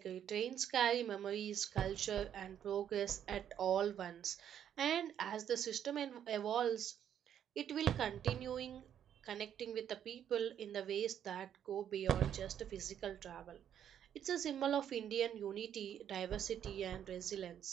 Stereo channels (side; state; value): left; quieter; 9.6 dB